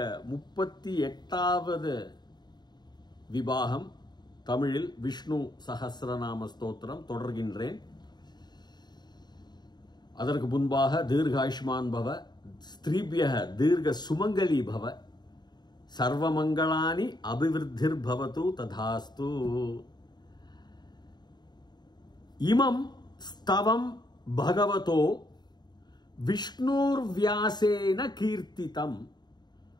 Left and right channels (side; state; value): right; late; 0.20 ms